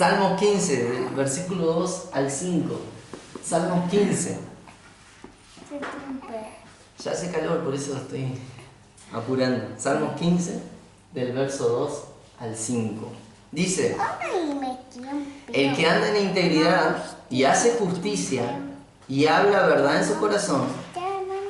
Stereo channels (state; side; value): identical; both; correlation 1.00